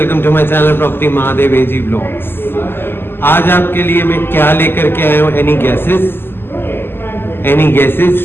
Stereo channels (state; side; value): late; right; 0.11 ms